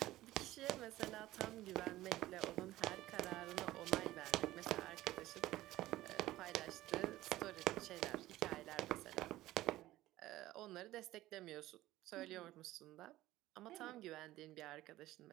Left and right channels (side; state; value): left; quieter; 16.1 dB